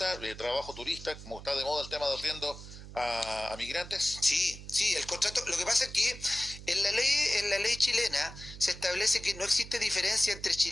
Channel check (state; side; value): noise; right; hum, 14 dB below the sound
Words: trabajo turista, como está de moda el tema de arriendo a migrantes? Sí, el contrato. Lo que pasa es que en la ley chilena se establece que no existe diferencia entre